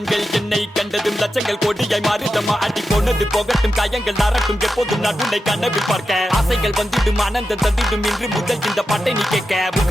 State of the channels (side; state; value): both; normal; correlation 0.90